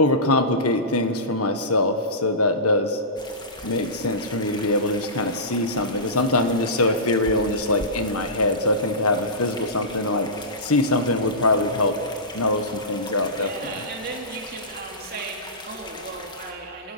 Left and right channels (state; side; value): normal; both; correlation -0.20